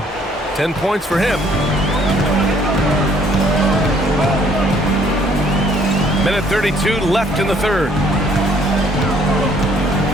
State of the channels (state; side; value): normal; both; correlation 0.62